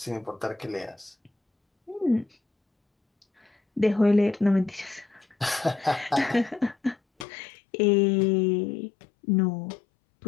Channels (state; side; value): drops out; right; at 7.2 s